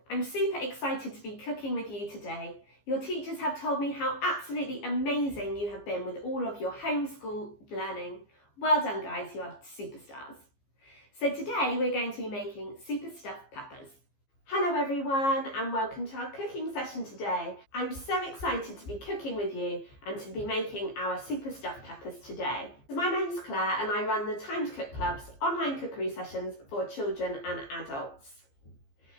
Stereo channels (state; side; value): late; right; 15 ms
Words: I'm super excited to be cooking with you today. Your teachers have told me how absolutely amazing you have been with all of your homeschool learning. Well done guys, you are superstars. So today we're going to be making super stuffed peppers. Hello everyone and welcome to our cooking session today. I'm so excited to be cooking with you and to be making our super stuffed peppers today. My name's Claire and I run the Time to Cook Club's online cookery sessions for children and adults.